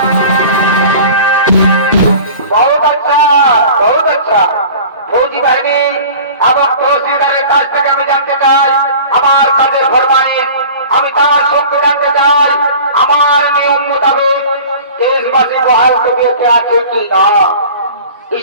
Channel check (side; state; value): both; inverted; correlation -0.41